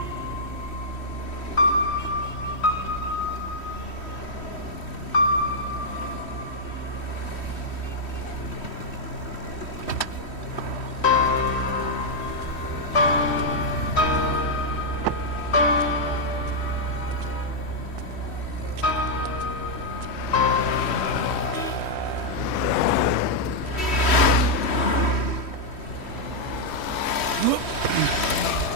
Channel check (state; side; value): late; right; 3.1 ms